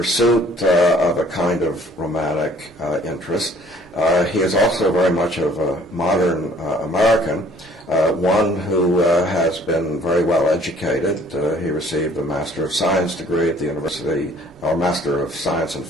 of a kind of romantic interest, he is also very much of a modern American, one who has been very well educated. He received a Master of Science degree at the University, or Master of Science and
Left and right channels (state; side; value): noise; right; rumble, 29 dB below the sound